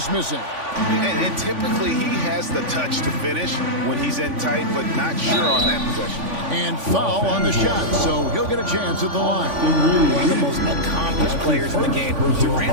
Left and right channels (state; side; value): late; left; 3.5 ms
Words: missing. And typically he has the touch to finish when he's in tight, but not sure on that possession. And foul on the shot, so he'll get a chance at the line. One of the most accomplished players in the game.